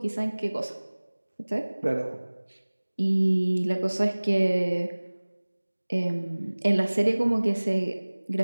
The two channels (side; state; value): both; inverted; correlation -1.00